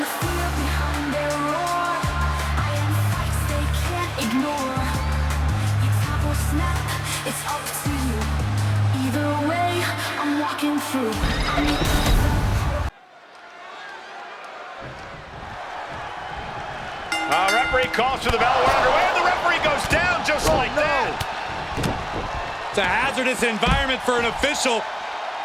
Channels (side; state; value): both; identical; correlation 1.00